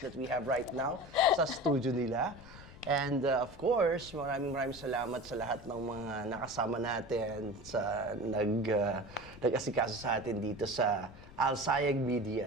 that we have right now sa studio nila. And of course, maraming salamat sa lahat ng mga nakasama natin sa nag-asikaso sa atin dito sa Alsayegh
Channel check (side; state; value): left; noise; rumble, 18 dB below the sound